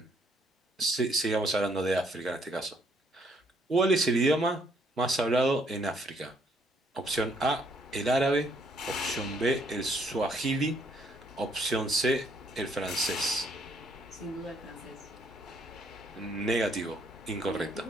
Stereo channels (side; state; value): both; normal; correlation 0.68